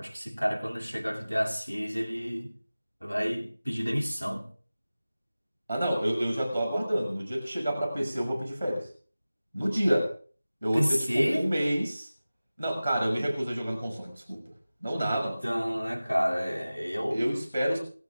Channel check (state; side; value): inverted; both; correlation -0.97